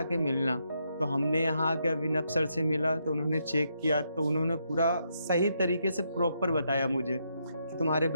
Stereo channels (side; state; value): both; inverted; correlation -0.78